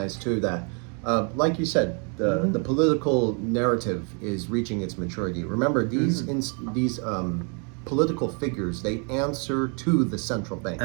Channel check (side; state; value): left; quieter; 37.2 dB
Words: too that, like you said, the political narrative is reaching its maturity. Remember, these political figures, they answer to the central banks.